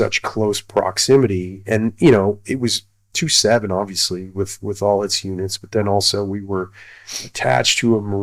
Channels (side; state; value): both; identical; correlation 1.00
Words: close proximity. And it was 2-7 obviously with all its units, but then also we were attached to a